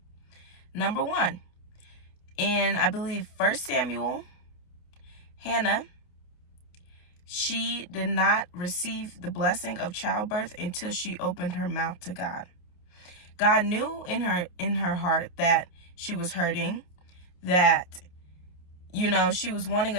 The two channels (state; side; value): late; right; 28 ms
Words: Number 1, in I believe 1 Samuel, Hannah, she did not receive the blessing of childbirth until she opened her mouth to God. God knew in her heart that she was hurting, that she was wanting